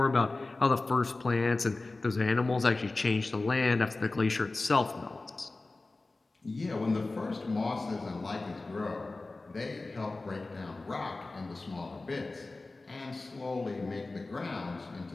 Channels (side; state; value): right; quieter; 3.3 dB